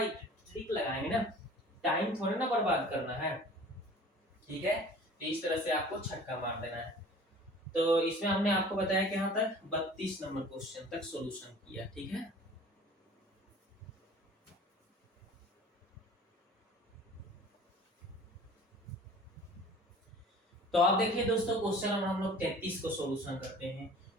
ट्रिक लगाएंगे ना, टाइम थोड़ा ना बर्बाद करना है। ठीक है, तो इस तरह से आपको छक्का मार देना है। तो इसमें हमने आपको बताया कि यहाँ तक 32 नंबर क्वेश्चन तक सॉल्यूशन किया। ठीक है, तो आप देखिए दोस्तों क्वेश्चन नंबर हम लोग 33 को सॉल्यूशन करते हैं।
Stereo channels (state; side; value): normal; both; correlation 0.45